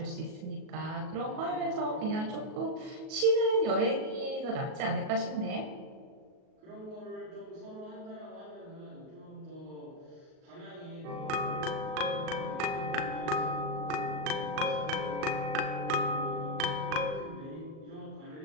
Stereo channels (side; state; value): left; late; 37 ms